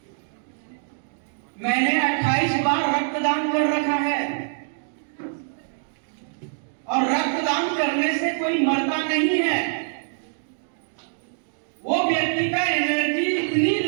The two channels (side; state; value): left; silent; digital silence